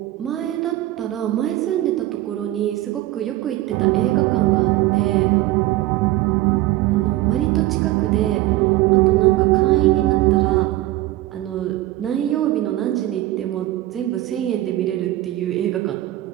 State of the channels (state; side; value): quieter; left; 16.2 dB